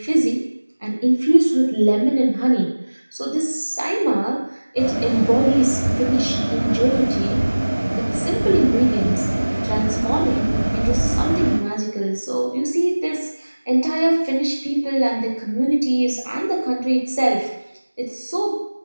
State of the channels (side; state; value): both; inverted; correlation -1.00